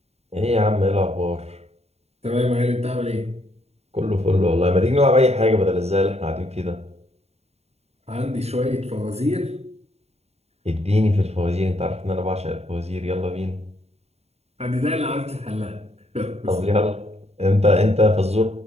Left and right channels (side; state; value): left; late; 0.30 ms